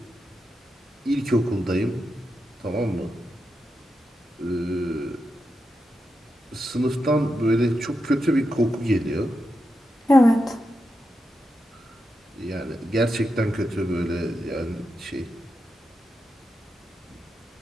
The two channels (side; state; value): both; normal; correlation 0.87